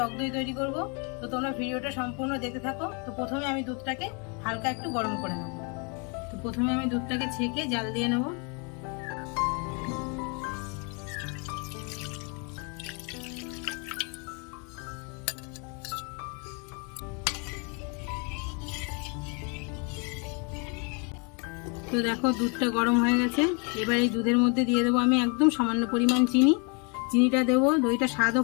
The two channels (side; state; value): right; quieter; 34.7 dB